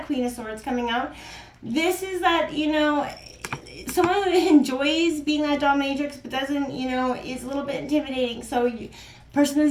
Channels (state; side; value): identical; both; correlation 1.00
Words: Queen of Swords coming out. This is that, someone who enjoys being that dominatrix but doesn't, is a little bit intimidating. So person